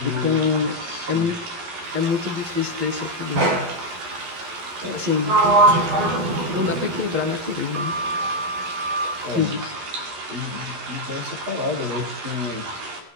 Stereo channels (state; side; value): late; left; 11 ms